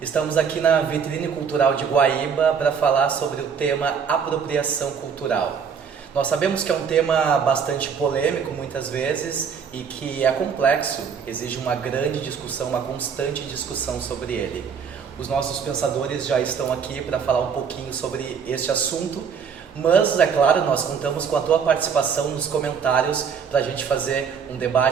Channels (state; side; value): quieter; left; 6.7 dB